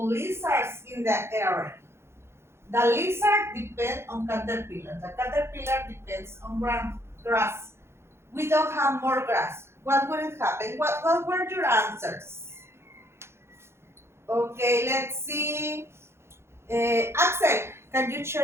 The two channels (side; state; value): left; late; 0.12 ms